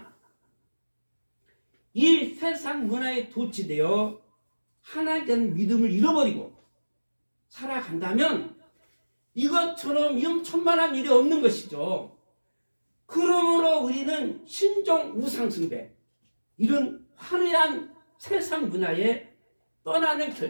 이 세상 문화에 도취되어 하나님께 대한 믿음을 잃어버리고 살아간다면 이것처럼 위험천만한 일이 없는 것이죠. 그러므로 우리는 신종 우상숭배, 이런 화려한 세상 문화에 떠나는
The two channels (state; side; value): inverted; both; correlation -1.00